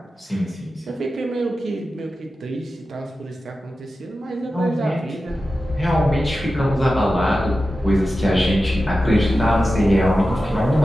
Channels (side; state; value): both; normal; correlation 0.93